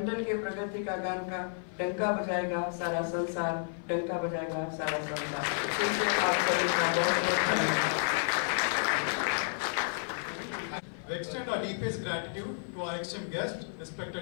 के प्रगति का गान का डंका बजाएगा सारा संसार, डंका बजाएगा सारा संसार. आप सभी का बहुत-बहुत धन्यवाद. We extend our deepest gratitude to our esteemed guests,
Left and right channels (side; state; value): right; silent; 55 dB below the other